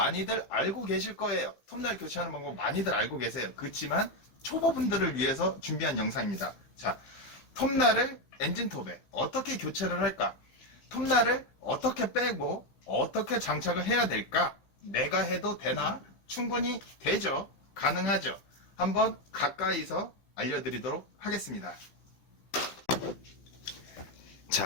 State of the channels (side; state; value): right; late; 15 ms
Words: 알고 계실 거예요. 톱날 교체하는 방법 많이들 알고 계세요. 그렇지만 초보분들을 위해서 준비한 영상입니다. 자, 톱날을 엔진톱에 어떻게 교체를 할까? 톱날을 어떻게 빼고 어떻게 장착을 해야 될까? 내가 해도 되나? 충분히 되죠. 가능하죠. 한번 가까이서 알려드리도록 하겠습니다.